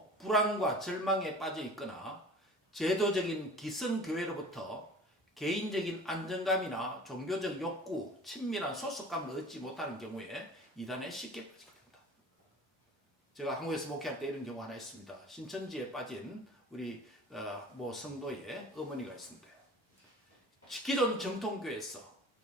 불안과 절망에 빠져 있거나 제도적인 기성교회로부터 개인적인 안정감이나 종교적 욕구, 친밀한 소속감을 얻지 못하는 경우에 이단에 쉽게 빠지게 됩니다. 제가 한국에서 목회할 때 이런 경우 하나 있습니다. 신천지에 빠진 우리 모 성도의 어머니가 있습니다. 기존 정통교회에서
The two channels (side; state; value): both; normal; correlation 0.42